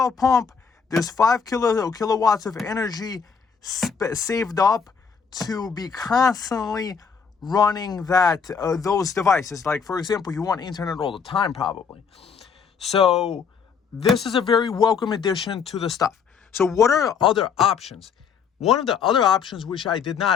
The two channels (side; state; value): right; quieter; 6.2 dB